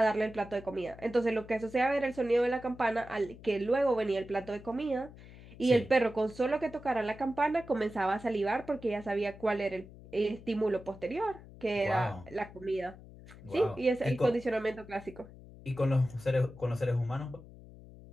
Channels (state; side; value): noise; left; hum, 18 dB below the sound